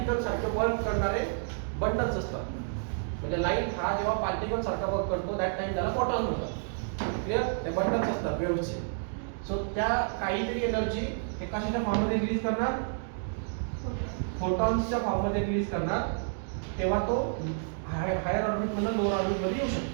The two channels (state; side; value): silent; left; digital silence